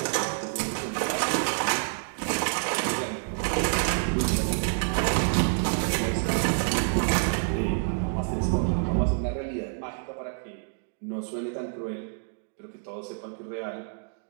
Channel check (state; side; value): silent; left; digital silence